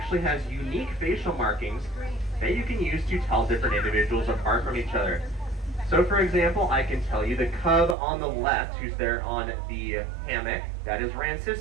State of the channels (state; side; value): drops out; left; at 8.0 s